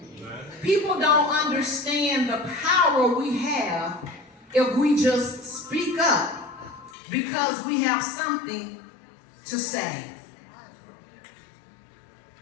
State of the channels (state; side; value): drops out; right; at 6.9 s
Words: People don't understand the power we have if we just speak up because we have something to say.